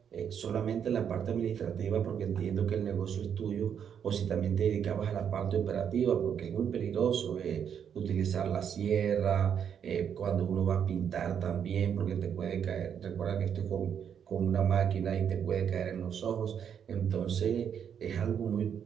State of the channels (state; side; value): quieter; left; 8.1 dB